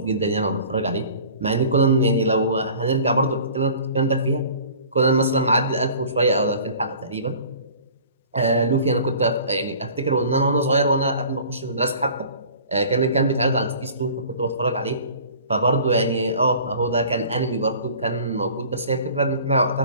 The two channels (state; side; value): inverted; both; correlation -0.46